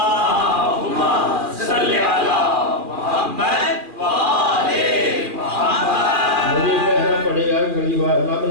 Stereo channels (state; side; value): late; left; 2.4 ms